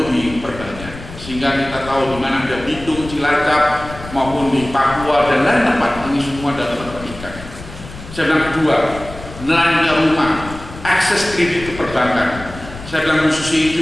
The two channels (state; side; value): noise; left; rumble, 14 dB below the sound